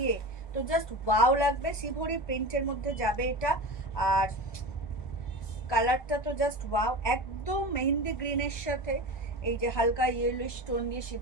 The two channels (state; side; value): late; right; 1.2 ms